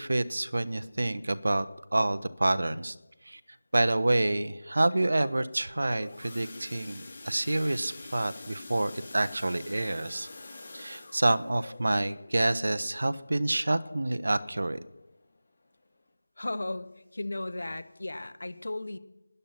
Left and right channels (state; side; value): inverted; both; correlation -0.99